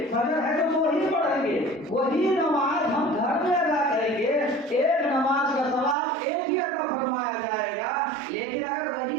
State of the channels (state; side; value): drops out; left; at 6.0 s